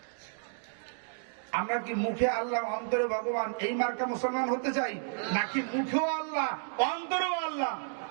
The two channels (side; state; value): left; silent; digital silence